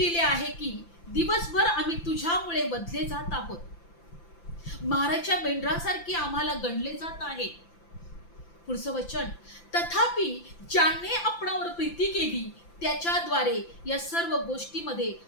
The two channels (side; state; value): right; late; 5.9 ms